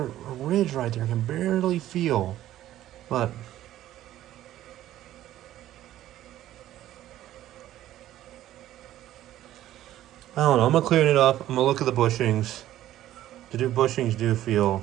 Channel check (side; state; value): left; quieter; 13.4 dB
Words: ridge right there. I can barely feel. But I don't know. I'm gonna clean it up. I'm gonna look at the bushings. The bushings do feel